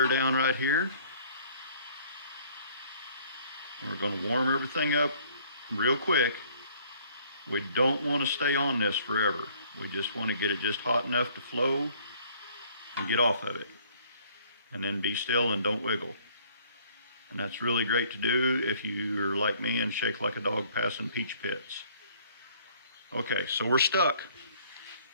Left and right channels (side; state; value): both; inverted; correlation -0.59